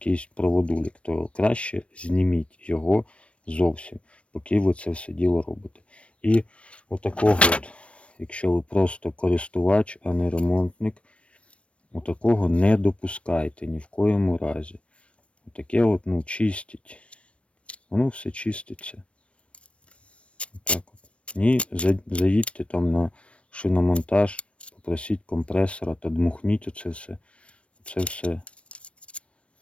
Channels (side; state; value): right; late; 0.061 ms